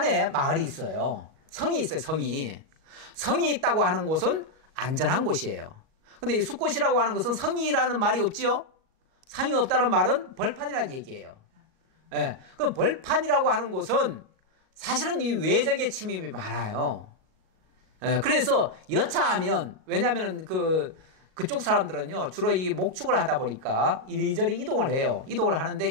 마을이 있어요. 성이 있어요. 성이 있다고 하는 곳은 안전한 곳이에요. 근데 이 숫곳이라고 하는 것은 성이라는 말이 없지요? 상이 없다는 말은 벌판이라는 얘기예요. 그 벌판이라고 하는 곳은 사실은 이 외적의 침입이 많아요. 그래서 여차하면, 왜냐면은 그쪽 사람들은요, 주로 이 목축을 하다 보니까 이리저리 이동을 해요. 이동을 하는데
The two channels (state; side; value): late; left; 38 ms